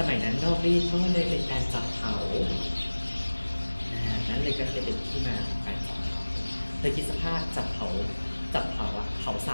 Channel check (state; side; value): inverted; both; correlation -1.00